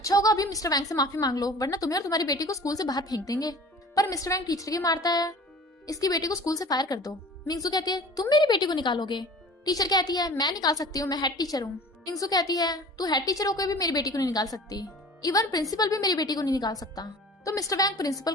होगा अभी मिस्टर वैंग से माफी मांग लो, वरना तुम्हें और तुम्हारी बेटी को स्कूल से बाहर फेंक देंगे। पर मिस्टर वैंग टीचर की मारता है, इसकी बेटी को स्कूल से फायर कर दो। मिंगसू कहती है तुम मेरी बेटी को निकालोगे? टीचर कहती है मैं निकाल सकती हूँ, मैं हेड टीचर हूँ। मिंगसू कहती है तू हेड टीचर होकर भी मेरी बेटी को नहीं निकाल सकती, इवन प्रिंसिपल भी मेरी बेटी को नहीं निकाल सकता। तो मिस्टर वैंग प्रिंसिपल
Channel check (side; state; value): both; normal; correlation 0.43